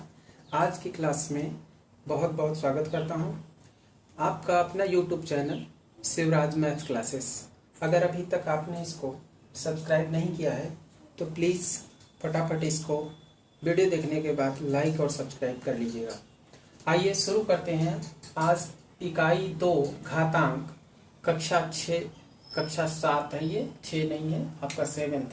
आज की क्लास में बहुत बहुत स्वागत करता हूं। आपका अपना YouTube channel Shivraj maths classes. अगर अभी तक आपने इसको सब्सक्राइब नहीं किया है तो प्लीज़ फटाफट इसको वीडियो देखने के बाद लाइक और सब्सक्राइब कर लीजिएगा। आइए शुरू करते हैं। आज इकाई 2 घातांक कक्षा 7 है, ये 6 नहीं है, आपका 7th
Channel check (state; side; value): identical; both; correlation 1.00